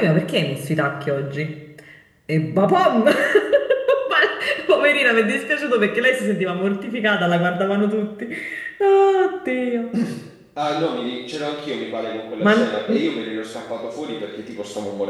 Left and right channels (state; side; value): identical; both; correlation 1.00